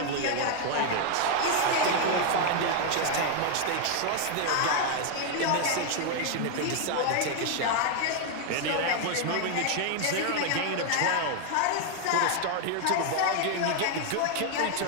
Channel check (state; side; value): different; both; correlation 0.00